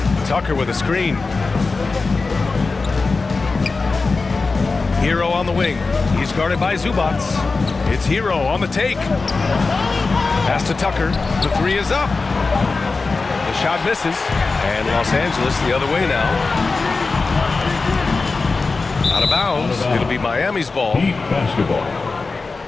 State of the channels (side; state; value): right; quieter; 4.0 dB